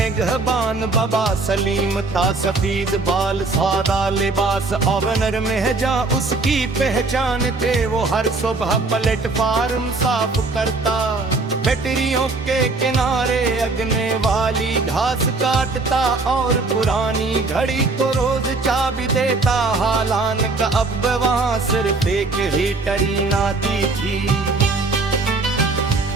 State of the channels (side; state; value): left; quieter; 3.6 dB